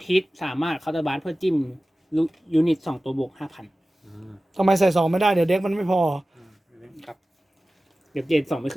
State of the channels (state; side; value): normal; both; correlation 0.96